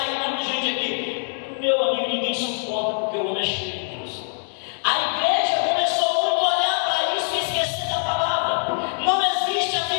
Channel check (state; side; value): silent; right; digital silence